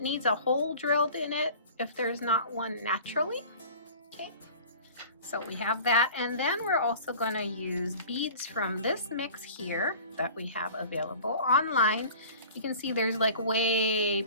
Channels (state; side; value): inverted; both; correlation -0.43